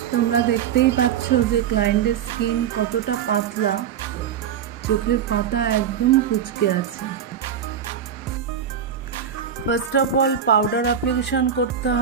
তোমরা দেখতেই পাচ্ছ যে ক্লায়েন্টের স্কিন কতটা পাতলা, চোখের পাতা একদম কুঁচকে আছে। First of all powder application করতে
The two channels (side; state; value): left; quieter; 8.3 dB